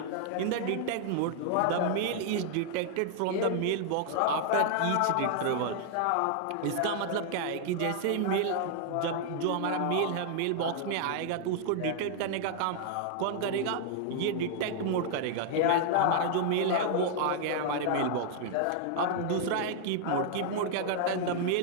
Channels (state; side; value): different; both; correlation 0.00